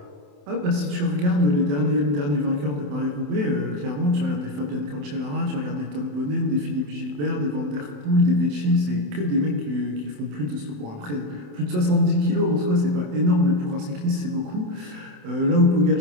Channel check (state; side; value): late; left; 27 ms